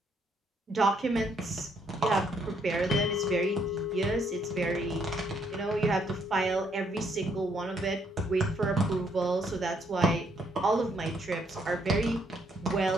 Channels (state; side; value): normal; both; correlation 0.71